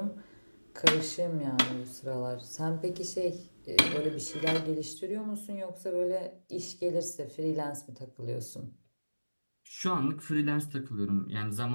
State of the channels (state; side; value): inverted; both; correlation -1.00